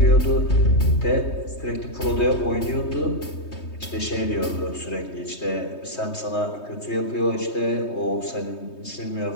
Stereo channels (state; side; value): late; right; 3.2 ms